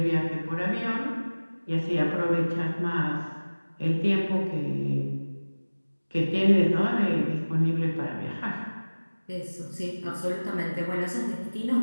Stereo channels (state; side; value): inverted; both; correlation -1.00